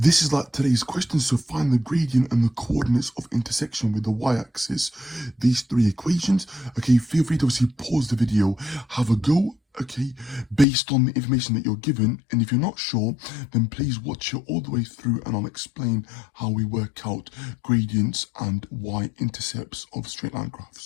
is like today's question. So find the gradient and the coordinates of intersection with the y-axis. These three equations. Okay, feel free to obviously pause the video, have a go. Okay, based on the information that you're given, and if you're not sure, then please watch it all the way through and I'll explain how we work out gradients and y-intercepts of straight line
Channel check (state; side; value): drops out; right; at 10.7 s